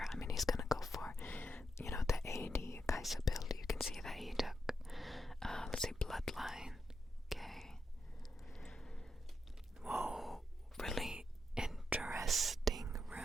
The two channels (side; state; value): both; normal; correlation 0.84